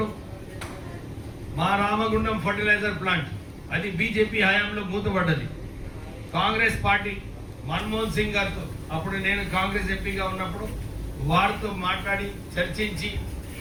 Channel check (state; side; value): identical; both; correlation 1.00